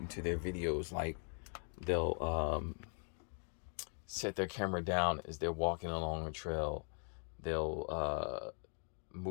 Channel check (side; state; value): right; silent; 51 dB below the other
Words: into their videos. Like they'll set their camera down as they're walking along a trail. They'll